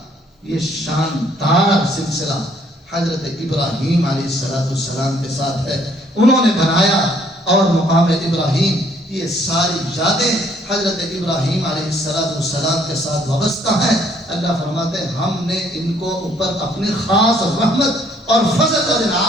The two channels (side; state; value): both; normal; correlation 0.64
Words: یہ شاندار سلسلہ حضرت ابراہیم علیہ السلام کے ساتھ ہے۔ انہوں نے بنایا، اور مقام ابراہیم یہ ساری یادیں حضرت ابراہیم علیہ السلام کے ساتھ وابستہ ہیں۔ اللہ فرماتے ہیں ہم نے ان کو اوپر اپنی خاص رحمت اور فضل اور